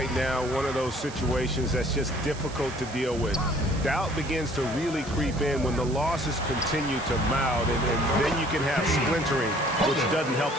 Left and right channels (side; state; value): right; noise; hiss, 16 dB below the sound